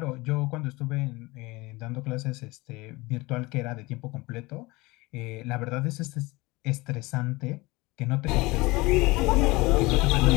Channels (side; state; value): right; quieter; 22.5 dB